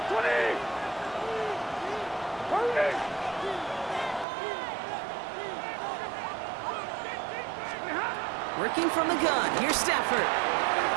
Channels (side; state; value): left; drops out; at 4.2 s